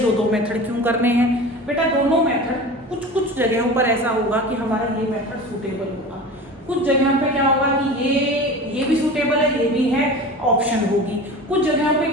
मेथड क्यों करने हैं? बेटा दोनों मेथड कुछ जगहों पर ऐसा होगा कि हमारा ये मेथड सूटेबल होगा, कुछ जगहों पर क्या होगा कि ये भी सूटेबल है, ये भी है, ऑप्शन होगी, कुछ जगहों पे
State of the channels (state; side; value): normal; both; correlation 0.34